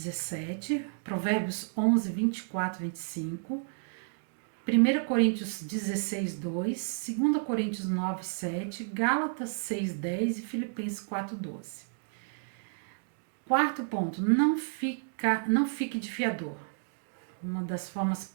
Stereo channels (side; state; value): left; silent; digital silence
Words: Provérbios 11, 24, 25, 1 Coríntios 16, 2, 2 Coríntios 9, 7, Gálatas 6, 10 e Filipenses 4, 12. Quarto ponto, não fique de fiador. Uma das formas